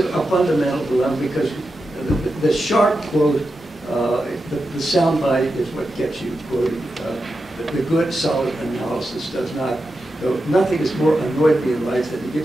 fundamental dilemma, because the sharp quote, the soundbite is what gets you quoted. The good, solid analysis does not. Nothing has more annoyed me in life than to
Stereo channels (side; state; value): both; normal; correlation 0.89